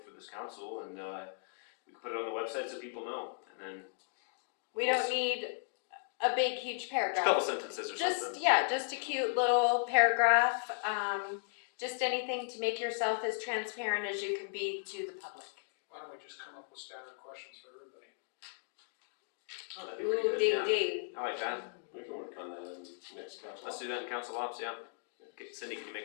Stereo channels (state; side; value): silent; right; digital silence